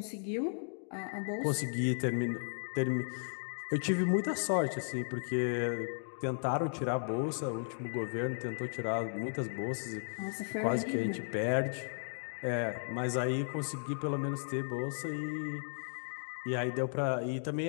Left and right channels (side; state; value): right; silent; digital silence